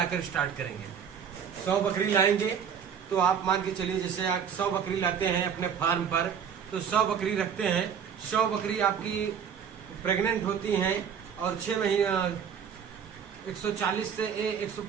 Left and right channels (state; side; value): quieter; left; 7.5 dB